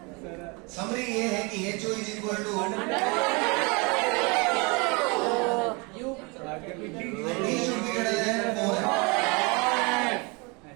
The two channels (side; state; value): left; quieter; 29.1 dB